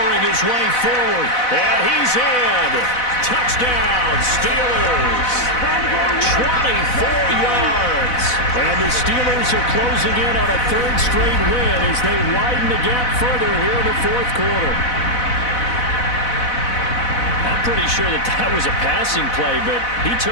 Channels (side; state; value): right; late; 4.0 ms